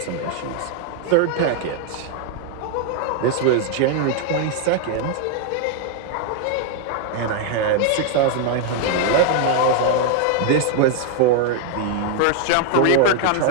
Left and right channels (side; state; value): both; different; correlation 0.00